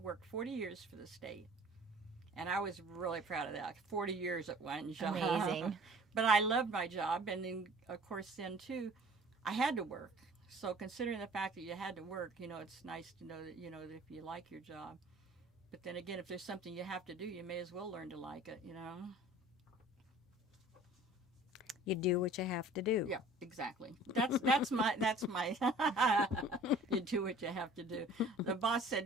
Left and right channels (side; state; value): both; normal; correlation 0.49